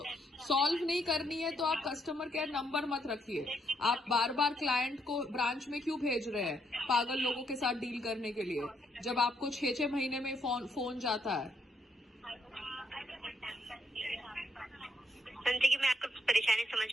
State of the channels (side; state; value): both; normal; correlation 0.74